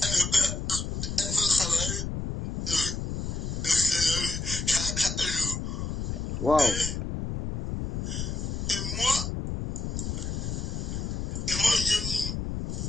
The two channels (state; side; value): noise; left; rumble, 3 dB below the sound